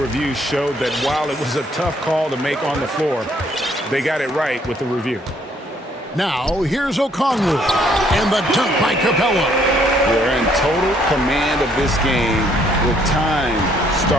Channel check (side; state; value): both; normal; correlation 0.66